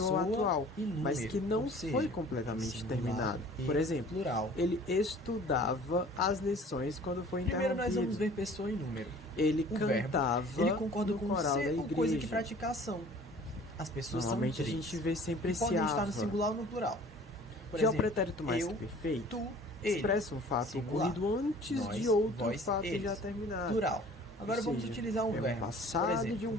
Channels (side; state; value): both; normal; correlation 0.48